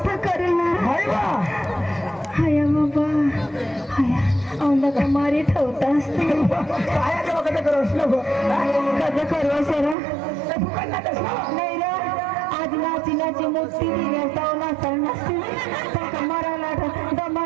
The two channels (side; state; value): left; drops out; at 10.0 s